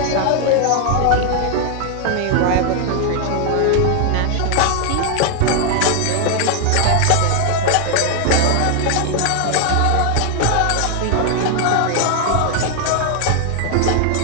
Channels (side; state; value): both; different; correlation 0.00